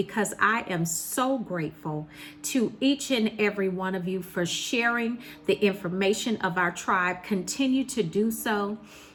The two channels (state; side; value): identical; both; correlation 1.00